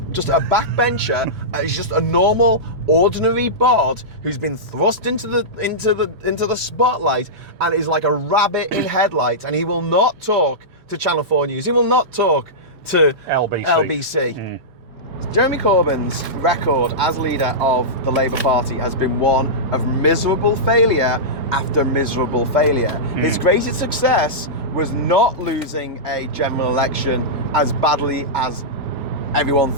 a backbencher. He's just a normal, ordinary bod who's been thrust into the spotlight and is like a rabbit in headlights. And he will not talk to Channel 4 News. He will not talk to LBC. Jeremy Corbyn's record as leader of the Labour Party has been one of miserable failure after miserable failure. His greatest success was not losing a general election as badly as everyone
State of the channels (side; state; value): both; normal; correlation -0.14